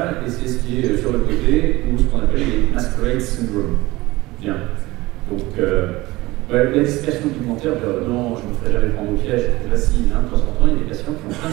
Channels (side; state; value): left; quieter; 20.1 dB